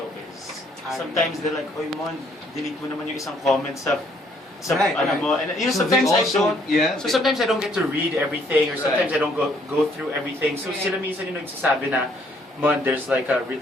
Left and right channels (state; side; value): normal; both; correlation 0.65